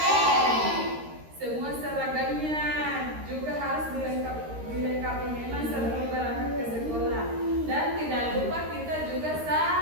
semua seragamnya juga harus dilengkapi memang sebelum berangkat ke sekolah. Dan tidak lupa kita juga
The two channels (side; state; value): left; late; 13 ms